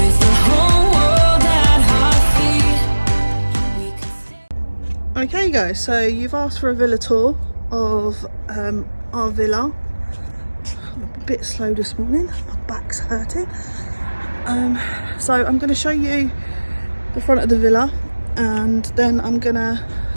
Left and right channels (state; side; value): inverted; both; correlation -1.00